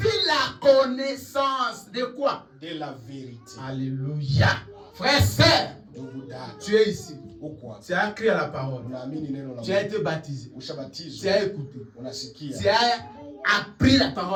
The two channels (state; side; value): identical; both; correlation 1.00